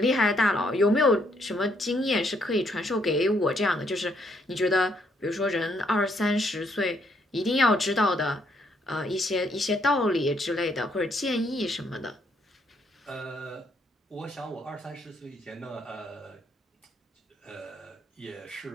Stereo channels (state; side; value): normal; both; correlation 0.71